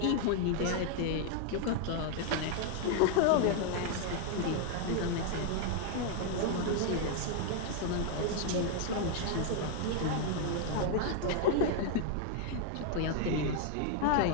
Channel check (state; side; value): different; both; correlation 0.00